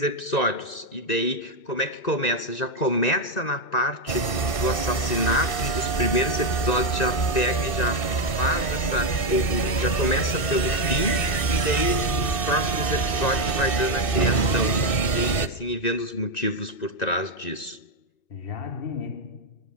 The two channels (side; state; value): right; late; 2.6 ms